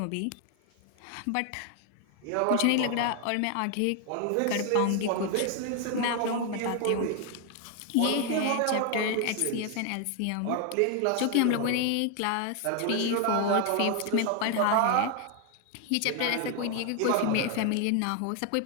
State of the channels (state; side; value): different; both; correlation 0.01